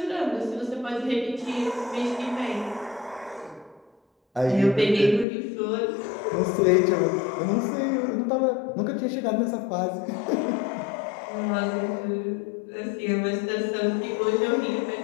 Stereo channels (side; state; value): right; drops out; at 5.2 s